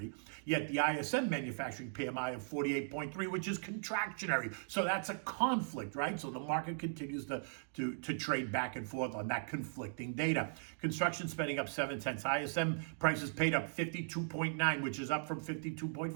yet the ISM manufacturing PMI of 48.3, which is contractionary. So that's a conflict, right? So the market continues to trade back and forth on that conflicting data. Construction spending up 0.7. ISM prices paid up 52.9, which is up from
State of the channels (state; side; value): silent; left; digital silence